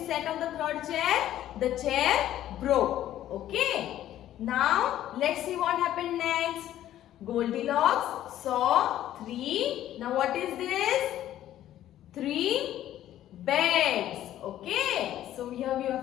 sat on the third chair, the chair broke. Okay, now let's see what happened next. Goldilocks saw three. Now what is this? Three beds. Okay, so here we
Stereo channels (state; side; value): quieter; right; 12.6 dB